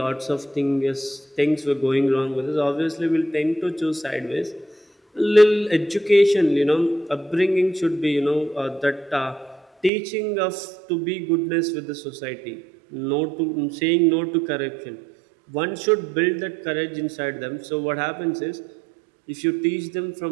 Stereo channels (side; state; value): left; drops out; at 9.9 s